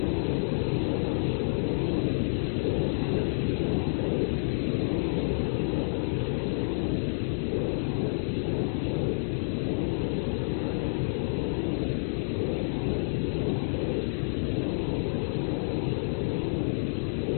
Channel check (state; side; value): silent; right; 59 dB below the other